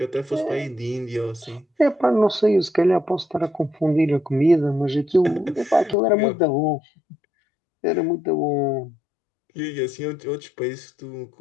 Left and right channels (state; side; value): drops out; right; at 6.0 s